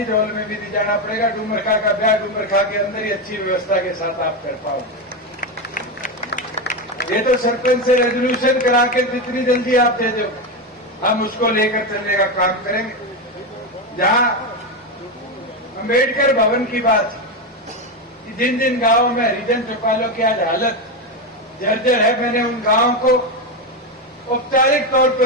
हॉल में भी नहीं जाना पड़ेगा। डूमरखा का ब्याह डूमरखा के अंदर ही अच्छी व्यवस्था के साथ आप कर पाओगे। ये तो सरपंच से रेजोल्यूशन करा के जितनी जल्दी आप दे दो हम उसको लेकर चलने का काम करेंगे। जहां अंबेडकर भवन की बात कि जिन जिन गांवों में हरिजन चौपालों की आज हालत जर्जर है, मैंने उन गांवों को औपचारिक तौर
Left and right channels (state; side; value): normal; both; correlation 0.12